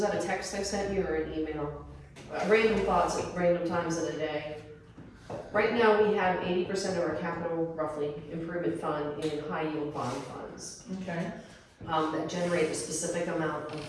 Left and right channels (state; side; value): identical; both; correlation 1.00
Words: that a text I sent you or an email? Random thoughts at random times of the day. Right now, we have 80% of our capital, roughly, improvement fund in high yield bond funds. Okay. That generate a specific amount of